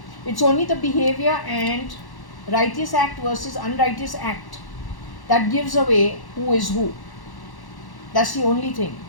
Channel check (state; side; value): late; right; 1.1 ms